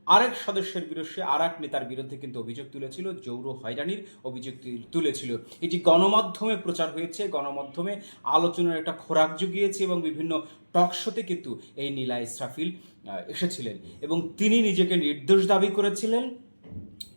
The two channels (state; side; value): inverted; both; correlation -1.00